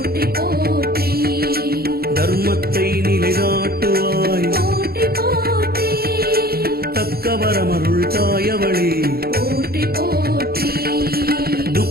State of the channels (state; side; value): late; left; 0.45 ms